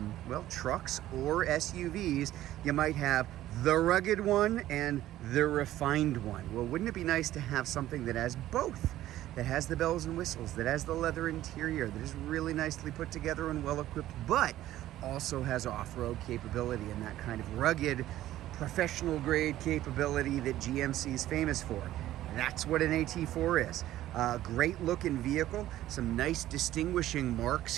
well, trucks or SUVs, you might have the rugged one and the refined one. Well, wouldn't it be nice to have something that has both? That has the bells and whistles, that has the leather interior, that is really nicely put together and well equipped, but also has off-road capability and that kind of rugged, professional grade capability that GMC is famous for. That's what an AT4 is. Great looking vehicle, some nice distinguishing marks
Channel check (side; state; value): left; quieter; 14.0 dB